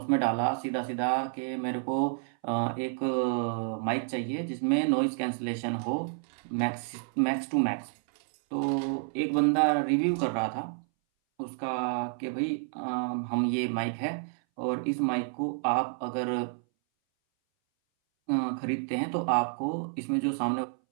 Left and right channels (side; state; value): left; silent; 58 dB below the other